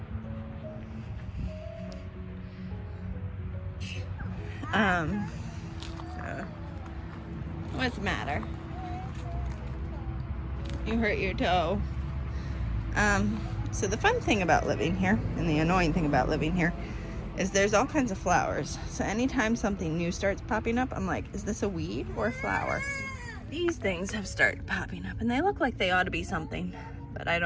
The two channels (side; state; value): both; identical; correlation 1.00